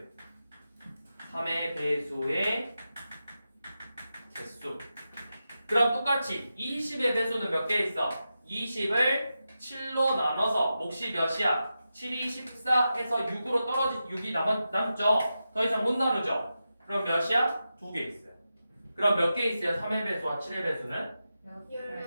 3의 배수의 개수. 그럼 똑같이 20의 배수는 몇 개 있어? 20을 7로 나눠서 몫이 몇이야? 7이 14 해서 6으로 떨어진 6이 남죠. 더 이상 못 나누죠. 그럼 몇이야? 2개 있어요. 그럼 몇 개 있어요? 3의 배수와 7의 배수는?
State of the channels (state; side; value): inverted; both; correlation -0.90